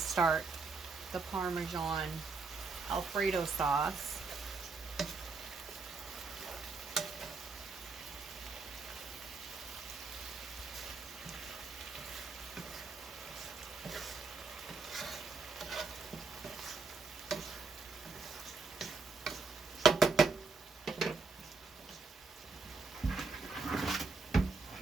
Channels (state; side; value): quieter; left; 4.2 dB